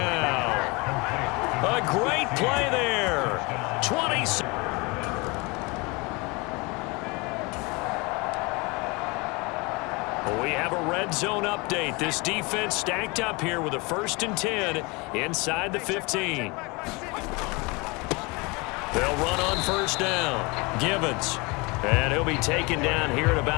A great play there. 26. We have a red zone update. This defense stacked up here with a 1st and 10 inside the 15. They'll run on first down. Gibbons. And he'll be taken down here at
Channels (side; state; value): right; quieter; 26.8 dB